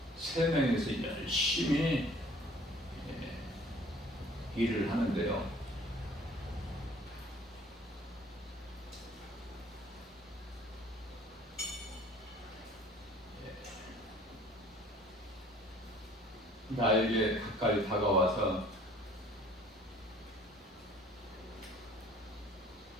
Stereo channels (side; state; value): both; normal; correlation 0.53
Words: 세 명이서 열심히 일을 하는데요. 나에게 가까이 다가와서